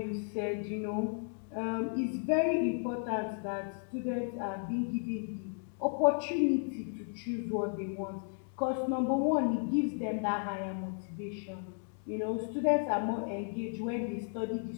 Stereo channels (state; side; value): silent; right; 55 dB below the other